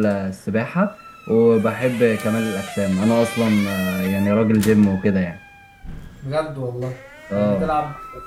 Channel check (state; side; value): identical; both; correlation 1.00